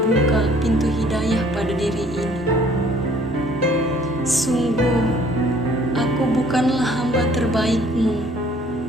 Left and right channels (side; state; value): both; normal; correlation 0.58